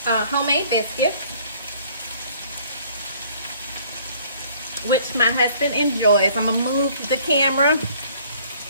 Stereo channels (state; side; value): inverted; both; correlation -0.57